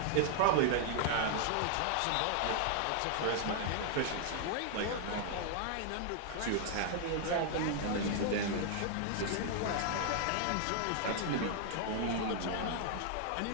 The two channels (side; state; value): both; different; correlation 0.00